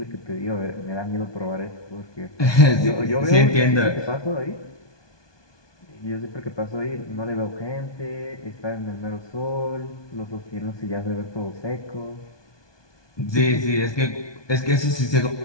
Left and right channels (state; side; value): late; right; 1.2 ms